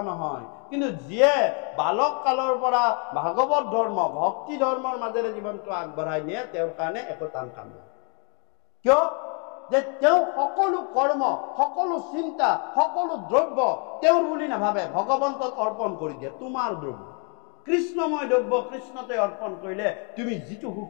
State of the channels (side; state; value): right; quieter; 38.1 dB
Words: নহয় কিন্তু যিয়ে বালক কালৰ পৰা ভাগৱত ধৰ্ম ভক্তি ধৰ্মৰ মাজেৰে জীৱনটো আগবঢ়াই নিয়ে তেওঁৰ কাৰণে একো টান কাম নহয় কিয় যে তেওঁ সকলো কৰ্ম সকলো চিন্তা সকলো দ্ৰব্য তেওঁৰ বুলি নাভাবে ভগৱন্তক অৰ্পণ কৰি দিয়ে তোমাৰ দ্ৰব্য কৃষ্ণময় দ্ৰব্য কৃষ্ণতে অৰ্পণ কৰিলে তুমি যিটো সুখ